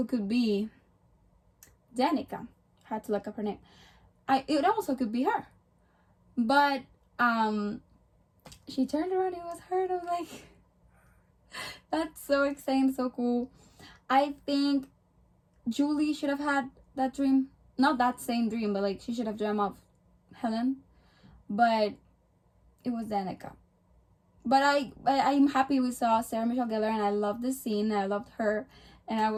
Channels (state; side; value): identical; both; correlation 1.00